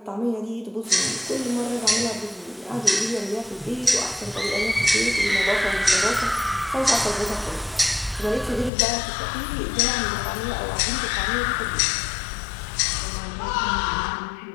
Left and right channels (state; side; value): drops out; right; at 8.7 s